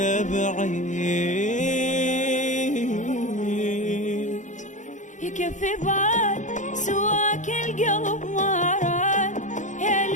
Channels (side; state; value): right; late; 0.36 ms